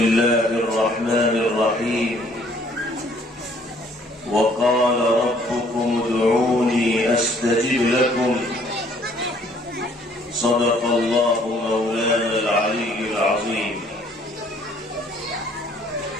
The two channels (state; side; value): normal; both; correlation 0.61